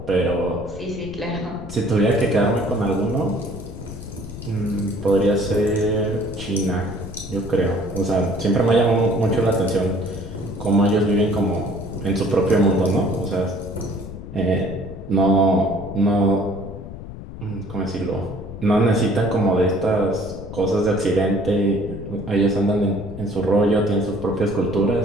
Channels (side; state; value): left; noise; rumble, 12 dB below the sound